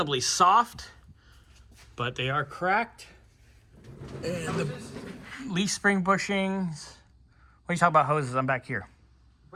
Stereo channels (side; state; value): both; identical; correlation 1.00